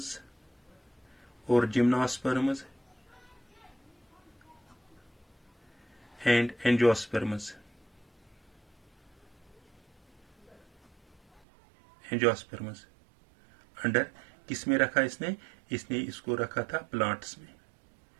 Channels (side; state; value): left; drops out; at 11.4 s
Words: और जिम्नोस्पर्म्स एंड एंजियोस्पर्म्स अंडर किस में रखा इसने इसको रखा था प्लांट्स में।